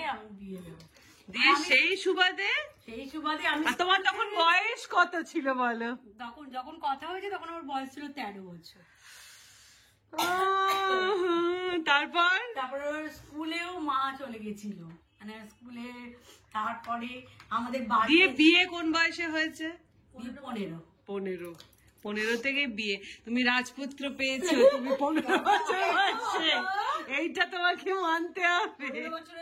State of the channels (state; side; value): identical; both; correlation 1.00